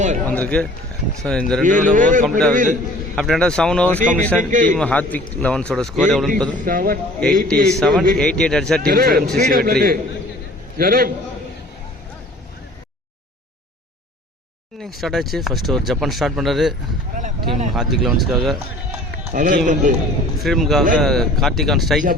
வந்திருக்கு. ஸோ இந்த 2 ரன் ஓவர் கம்ப்ளீட் ஆகுது. After end of 7 overs completion team Hardvik லெவன்ஸோட ஸ்கோர் எவ்வளோன்னு பார்த்தோம் 87. 88 அடிச்சா டீம் ஃப்ரீடம் சிசி வெற்றி. இன்னிங் ஸ்டார்ட் ஆச்சு. ஃபர்ஸ்ட் ஒரு ஜப்பான் ஸ்டார்ட் பண்ணுறாரு டீம் ஹார்த்விக் லெவன்ஸ்க்காக. ஃப்ரீடமுக்காக கார்த்திக் ஆன் ஸ்ட்ரைக்.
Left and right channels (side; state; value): both; normal; correlation 0.49